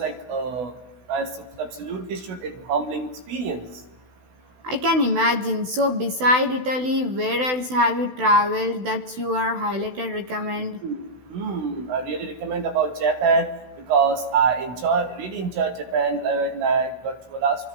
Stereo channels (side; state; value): left; late; 16 ms